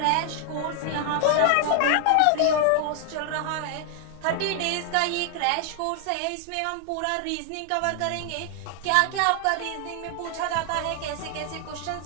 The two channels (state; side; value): different; both; correlation 0.00